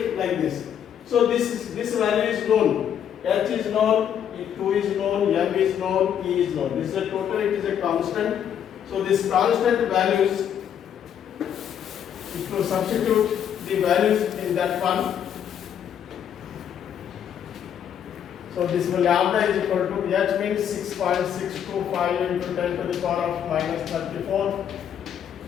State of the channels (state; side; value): quieter; right; 9.1 dB